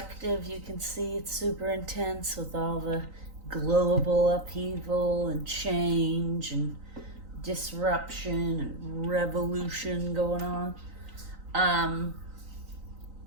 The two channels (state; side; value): late; left; 3.9 ms